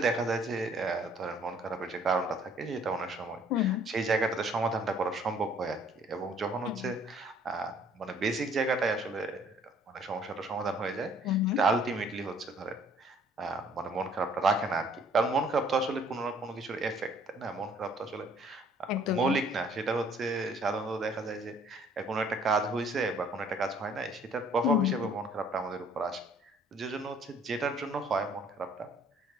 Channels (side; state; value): both; normal; correlation 0.59